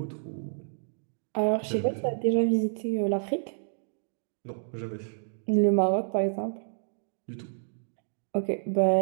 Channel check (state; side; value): silent; left; digital silence